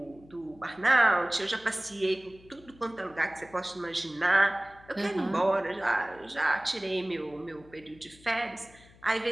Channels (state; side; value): noise; left; hum, 25 dB below the sound